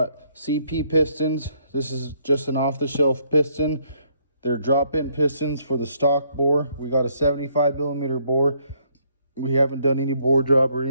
CP pistons. This is just an off-the-shelf piston. They're drop-in pistons for the stock bore. We got a 75 millimeter bore. We haven't done any bore job or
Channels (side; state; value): both; inverted; correlation -0.69